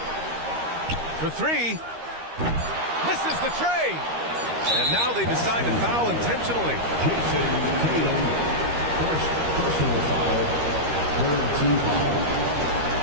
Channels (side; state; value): left; late; 13 ms